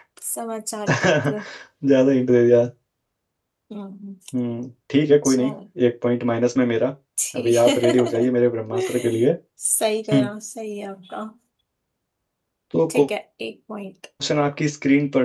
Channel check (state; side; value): identical; both; correlation 1.00